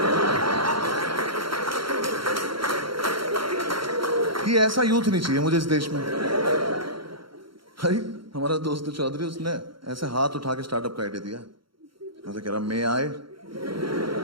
कि ऐसा यूथ नहीं चाहिए मुझे इस देश में। भाई हमारा दोस्त चौधरी, उसने ऐसे हाथ उठा के स्टार्टअप का आइडिया दिया। मैं कह रहा मैं आए,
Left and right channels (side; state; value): left; late; 0.73 ms